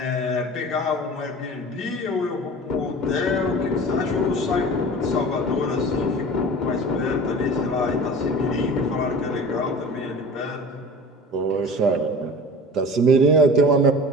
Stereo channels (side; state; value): both; normal; correlation 0.38